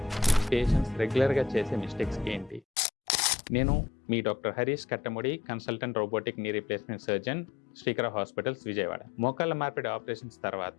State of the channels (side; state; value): right; drops out; at 2.6 s